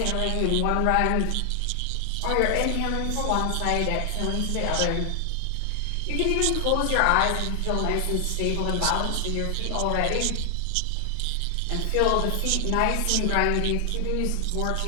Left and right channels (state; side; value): different; both; correlation 0.00